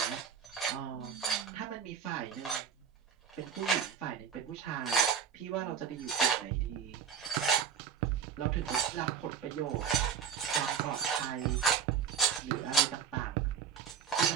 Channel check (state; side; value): quieter; left; 7.5 dB